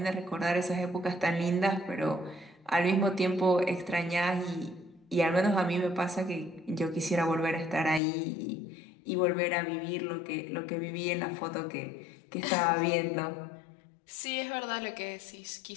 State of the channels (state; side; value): drops out; right; at 8.0 s